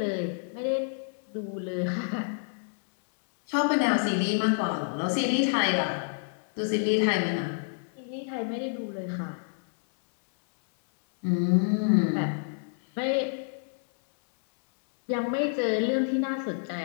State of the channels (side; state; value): right; silent; 59 dB below the other